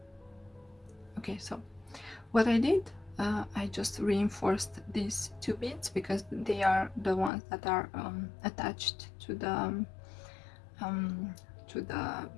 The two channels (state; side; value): drops out; right; at 7.3 s